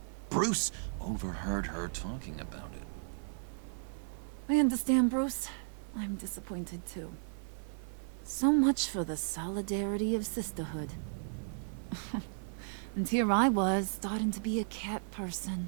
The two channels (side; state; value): left; silent; 55 dB below the other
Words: Bruce overheard her talking about it. I understand, Bruce. I'm disappointed too. So much for the solidarity of sisterhood. And here I was, starting to be a cat person.